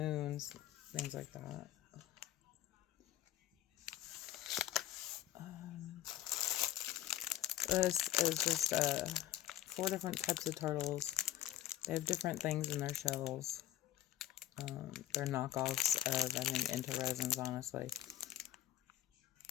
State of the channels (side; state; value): right; quieter; 13.2 dB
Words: things like that. This is just 4 different types of turtles. They have different things in their shells. They're knockoffs of, I think, Into Resins, honestly.